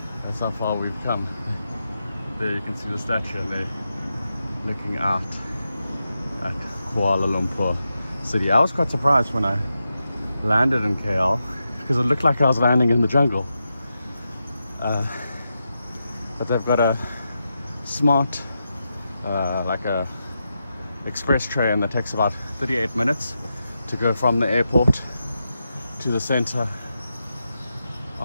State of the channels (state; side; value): inverted; both; correlation -0.88